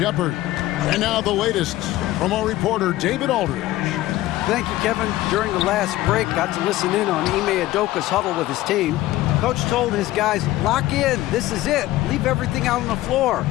And now the latest from our reporter David Aldridge. Thank you, Kevin. During the last break, got to listen in on Ime Udoka's huddle with his team. Coach told his guys, lock in, this is it. Leave everything out on the floor.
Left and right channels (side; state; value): right; quieter; 16.2 dB